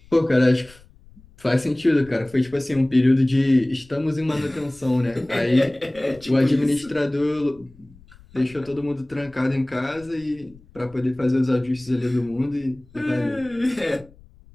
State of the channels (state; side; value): noise; left; rumble, 25 dB below the sound